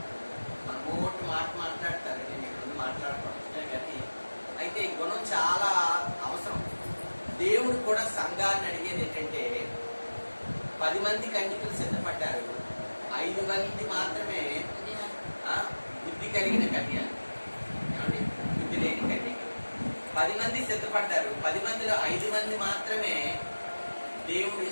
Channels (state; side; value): inverted; both; correlation -1.00